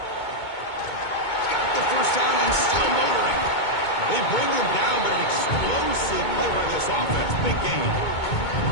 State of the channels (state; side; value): late; right; 2.2 ms